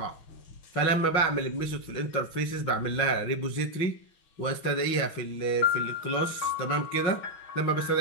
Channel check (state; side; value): late; right; 6.2 ms